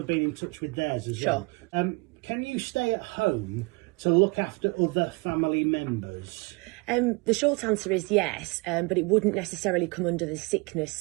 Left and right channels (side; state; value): left; quieter; 27.7 dB